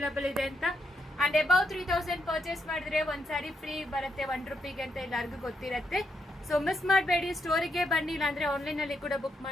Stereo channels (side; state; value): both; normal; correlation 0.80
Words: ಇದೆ ಅಂತ. ಅಂಡ್ ಅಬೌವ್ 3000 ಪರ್ಚೇಸ್ ಮಾಡಿದ್ರೆ ಒಂದ್ ಸ್ಯಾರಿ ಫ್ರೀ ಬರುತ್ತೆ ₹1 ಅಂತ ಎಲ್ಲರಿಗೂ ಗೊತ್ತಿರುತ್ತೆ. ಸೊ ಮಿಸ್ ಮಾಡಬೇಡಿ. ಸ್ಟೋರಿಗೆ ಬನ್ನಿ, ಇಲ್ಲಾಂದ್ರೆ ಆನ್ಲೈನ್ ಅಲ್ಲಿ ಕೂಡ ಬುಕ್